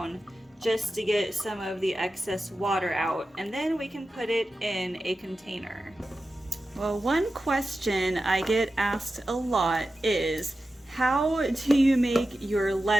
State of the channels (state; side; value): normal; both; correlation 0.93